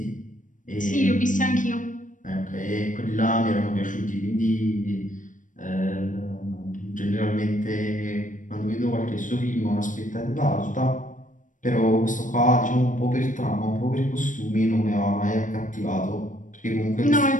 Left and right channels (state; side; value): late; right; 0.37 ms